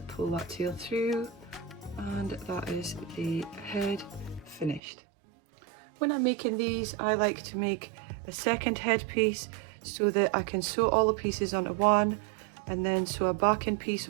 pull that tail through, and that is the head finished. When I'm making these, I like to make a second headpiece so that I can sew all the pieces onto one and then sew a backing piece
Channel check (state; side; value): drops out; left; at 4.8 s